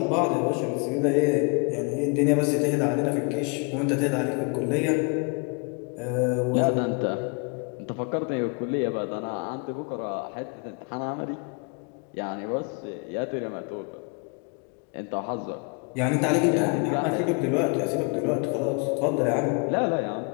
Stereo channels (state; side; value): quieter; right; 34.4 dB